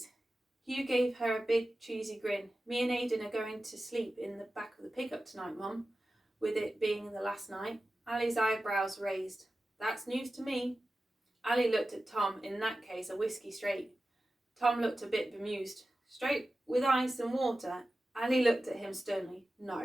Hugh gave her a big cheesy grin. Me and Aidan are going to sleep in the back of the pickup tonight, Mum, with it being the last night. Ali's eyebrows raised. That's news to me. Ali looked at Tom. In that case, a whiskey straight. Tom looked a bit bemused. Straight with ice and water? Ali looked at him sternly.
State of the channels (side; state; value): both; normal; correlation 0.94